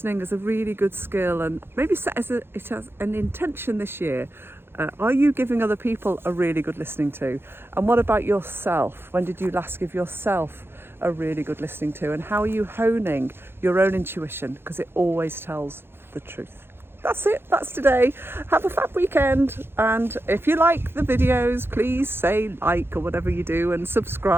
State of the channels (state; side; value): late; left; 0.11 ms